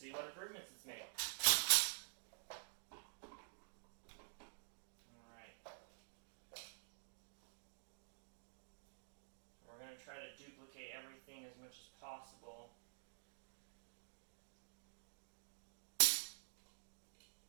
what improvements it's made. We're going to try to duplicate everything as much as possible.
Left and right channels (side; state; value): left; silent; digital silence